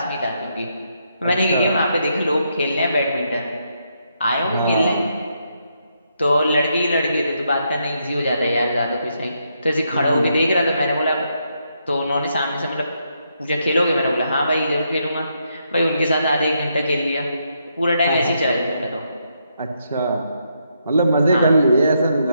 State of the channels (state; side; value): inverted; both; correlation -0.78